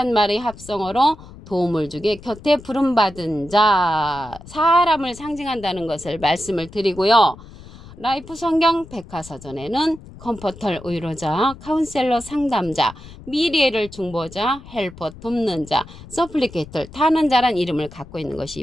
말의 합성어로 도움을 주게 곁에 부름받은 자, 사람을 상징한다는 것을 말씀을 드리고요. 라이프 성경 백과사전에는 컴포터 의로자, 카운셀러 상담자, 미리애를 중보자, 헬퍼 돕는 자, 서플리케이터 타는 자란 이름을 갖고 있는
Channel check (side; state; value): left; noise; rumble, 18 dB below the sound